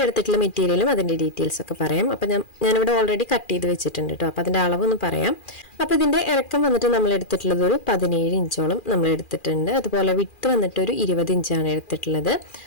എടുത്തിട്ടുള്ള മെറ്റീരിയലും അതിൻ്റെ ഡീറ്റെയിൽസൊക്കെ പറയാം. അപ്പോൾ ഞാനിവിടെ ഓൾറെഡി കട്ട് ചെയ്ത് വെച്ചിട്ടുണ്ട് കേട്ടോ. അപ്പോൾ അതിൻ്റെ അളവൊന്ന് പറയാം. അപ്പോൾ ഇതിൻ്റെ ഇറക്കം വന്നിട്ട് നമ്മൾ എടുത്തിട്ടുള്ളത് ഒരു 17 ഇഞ്ചോളം നമ്മൾ എടുത്തിട്ടുണ്ട്. അതുപോലെ വിട്ട് വന്നിട്ട് ഒരു 20 ഇഞ്ചാണ് എടുത്തിട്ടുള്ളത്.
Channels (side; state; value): right; late; 2.4 ms